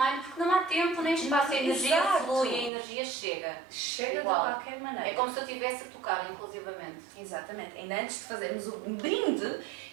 porque não há tempo nem espaço, a energia Exato. flui, a energia chega. Chega Igual. de qualquer maneira. É como se eu estivesse a tocar, inclusivamente. Exatamente. Ainda antes de fazermos o brinde,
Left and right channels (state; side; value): drops out; left; at 2.7 s